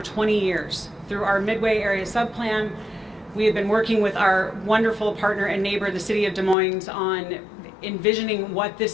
20 years. Through our Midway Area Subplan, we have been working with our wonderful partner and neighbor, the city of Des Moines, on envisioning what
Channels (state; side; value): drops out; right; at 6.6 s